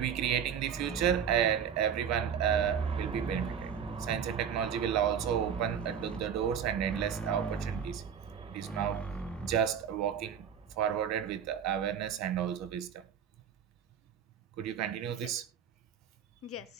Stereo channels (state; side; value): quieter; left; 7.9 dB